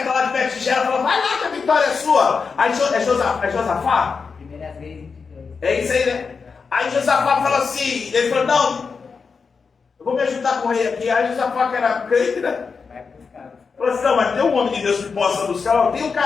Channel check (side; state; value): right; quieter; 5.2 dB